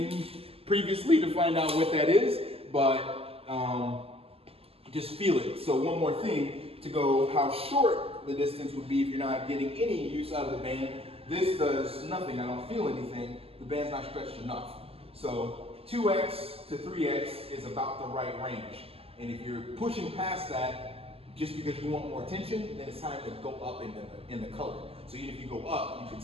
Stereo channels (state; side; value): late; left; 0.28 ms